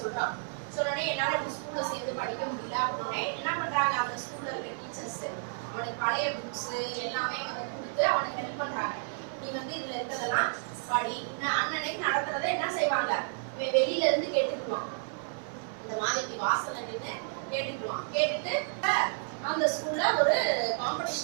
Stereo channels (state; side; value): silent; left; 57 dB below the other